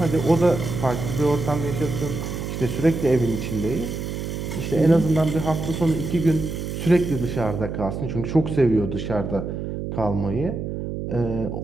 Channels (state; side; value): noise; right; hum, 5 dB below the sound